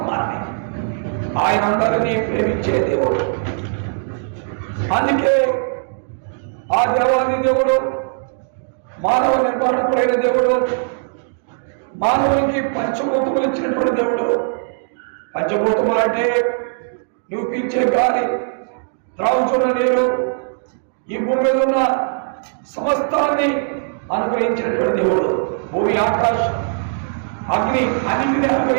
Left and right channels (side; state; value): left; silent; digital silence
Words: ఆయన అందరినీ ప్రేమించే దేవుడు. అందుకే ఆ దేవాది దేవుడు మానవ నిర్మాణకుడైన దేవుడు, మానవునికి పంచభూతములు ఇచ్చినటువంటి దేవుడు. పంచభూతములు అంటే నువ్వు పీల్చే గాలి, త్రాగుచున్న నీరు, ఈ భూమి మీద ఉన్న సమస్తాన్ని అనుగ్రహించినటువంటి దేవుడు. భూమి, ఆకాశం, అగ్ని అన్నింటినీ